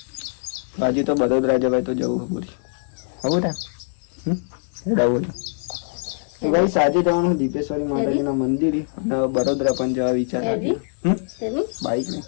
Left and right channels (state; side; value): silent; right; 59 dB below the other